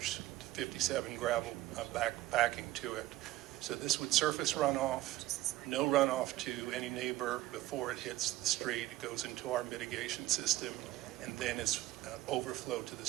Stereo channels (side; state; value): left; quieter; 16.3 dB